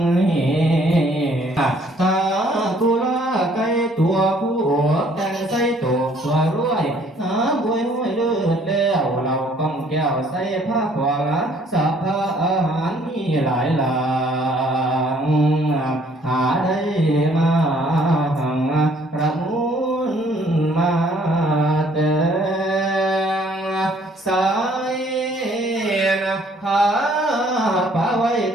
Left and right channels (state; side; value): normal; both; correlation 0.61